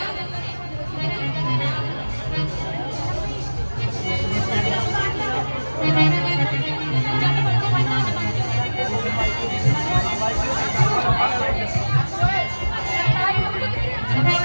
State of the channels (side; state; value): both; inverted; correlation -1.00